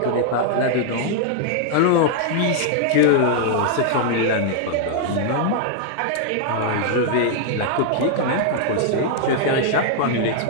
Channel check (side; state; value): both; different; correlation -0.01